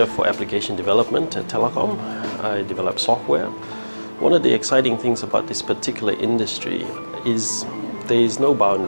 for Application Development at Telecom. I develop software. One of the exciting things about this particular industry is there is no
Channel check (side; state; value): both; inverted; correlation -1.00